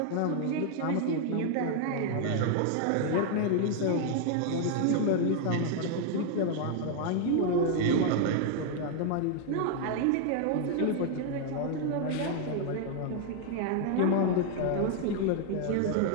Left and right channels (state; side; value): different; both; correlation 0.00